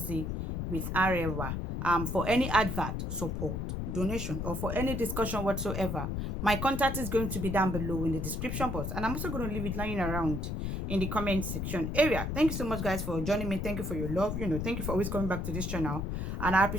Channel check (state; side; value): noise; left; rumble, 2 dB below the sound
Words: with Arewa. For any advert, support, donation, or for any discussion whatsoever, my contact is going to be down below in the description box, and I'm also going to leave it lying around in the comment section area. Thank you so much guys for joining me. Thank you for your love. Thank you for always coming back to this channel, and I